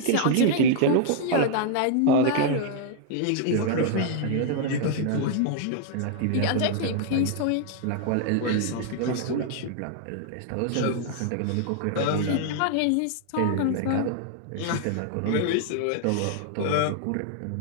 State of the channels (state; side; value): different; both; correlation 0.00